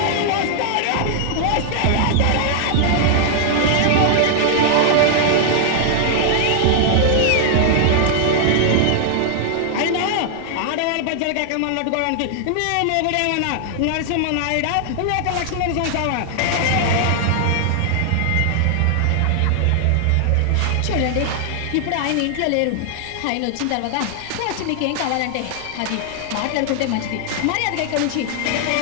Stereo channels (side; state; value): both; different; correlation 0.00